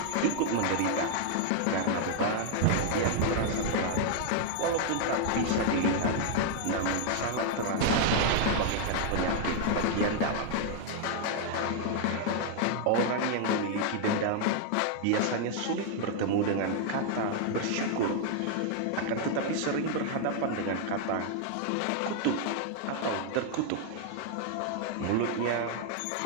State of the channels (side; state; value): both; different; correlation 0.00